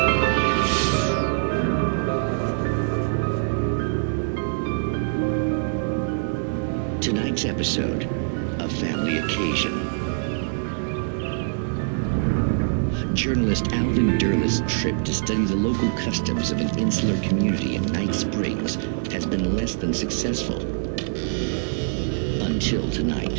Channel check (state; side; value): silent; left; digital silence